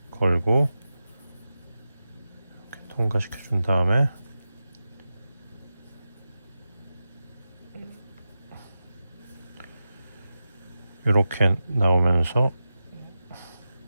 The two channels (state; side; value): inverted; both; correlation -0.92